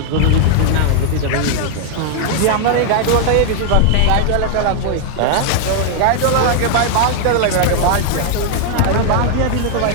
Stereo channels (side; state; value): both; different; correlation 0.00